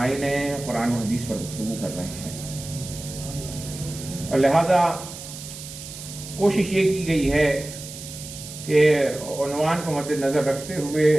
قرآن و حدیث پر گفتگو کر رہے ہیں، اور لہذا کوشش یہ کی گئی ہے کہ عنوان کو مد نظر رکھتے ہوئے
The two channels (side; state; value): right; noise; hiss, 12 dB below the sound